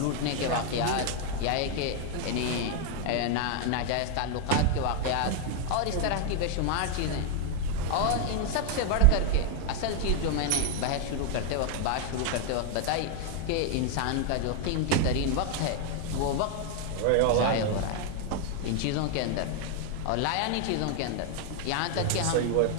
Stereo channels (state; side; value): different; both; correlation 0.00